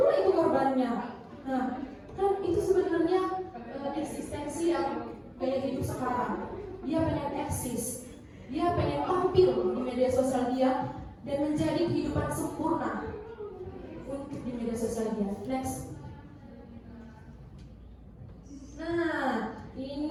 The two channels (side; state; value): both; identical; correlation 1.00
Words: itu korbannya. Nah, kan itu sebenarnya eksistensi yang gaya hidup sekarang. Dia pengen eksis, dia pengen tampil di media sosial dia dan menjadi kehidupan sempurna untuk di media sosial dia. Next. Nah,